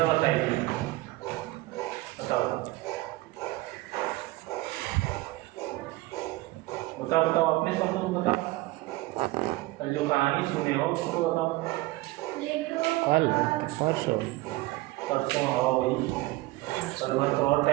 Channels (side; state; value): left; quieter; 19.7 dB